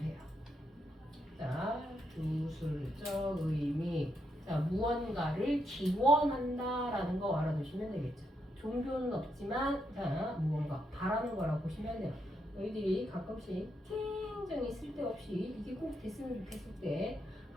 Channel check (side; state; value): both; normal; correlation 0.80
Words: 자, 주술적 의미. 자, 무언가를 기원한다라는 거 알아두시면 되겠죠. 종교는 없지만, 자, 무언가 바라는 거라고 보시면 돼요. 너희들이 가끔씩 굉장히 쓸데없이 이게 꼭 됐으면 좋겠을 때